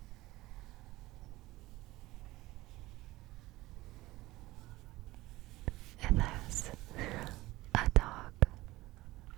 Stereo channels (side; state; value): left; quieter; 18.6 dB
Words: It has a dog